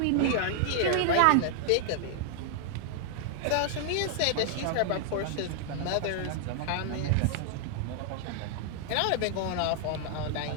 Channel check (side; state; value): both; different; correlation -0.01